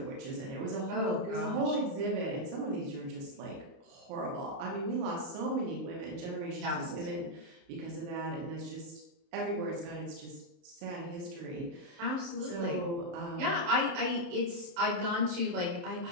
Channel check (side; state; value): left; late; 29 ms